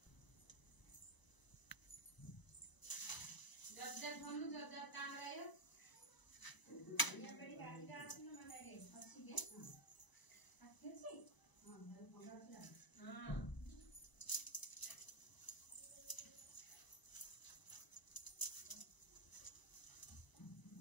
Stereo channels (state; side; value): late; right; 1.0 ms